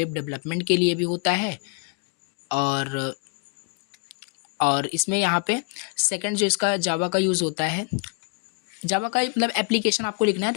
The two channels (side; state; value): right; quieter; 37.5 dB